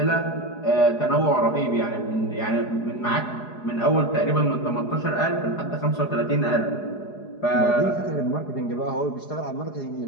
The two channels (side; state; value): right; late; 4.8 ms